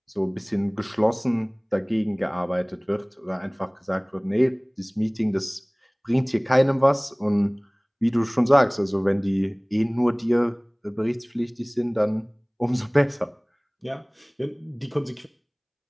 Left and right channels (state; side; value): identical; both; correlation 1.00